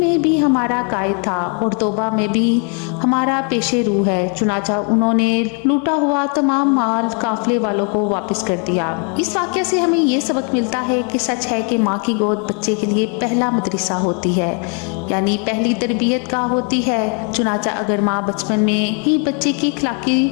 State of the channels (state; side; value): quieter; right; 38.3 dB